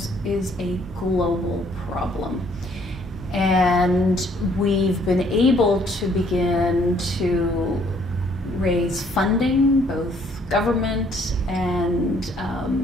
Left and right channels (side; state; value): both; normal; correlation 0.64